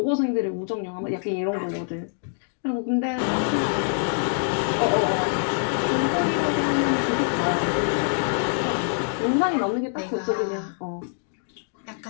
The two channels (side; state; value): right; silent; digital silence